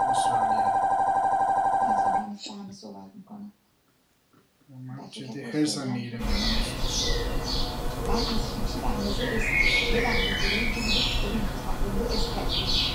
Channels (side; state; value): both; identical; correlation 1.00